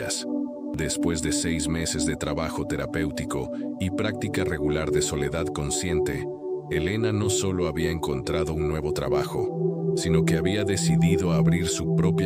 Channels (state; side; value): identical; both; correlation 1.00